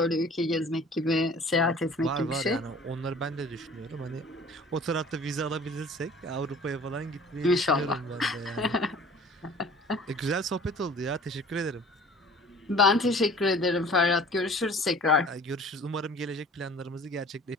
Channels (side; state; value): both; normal; correlation 0.47